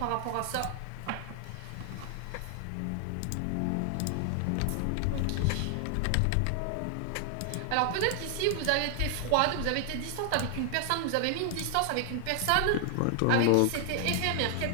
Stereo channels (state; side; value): different; both; correlation 0.00